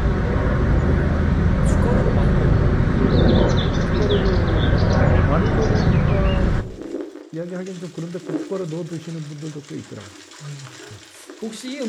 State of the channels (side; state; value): both; identical; correlation 1.00